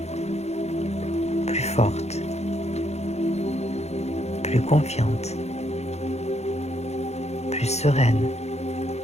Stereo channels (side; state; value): right; late; 0.31 ms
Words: plus forte, plus confiante, plus sereine.